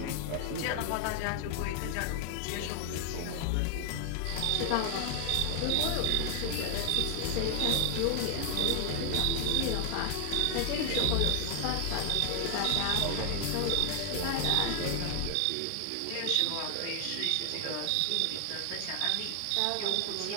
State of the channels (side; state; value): both; different; correlation 0.00